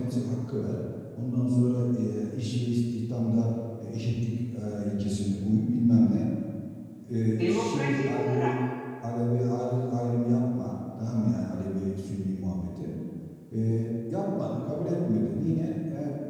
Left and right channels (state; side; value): identical; both; correlation 1.00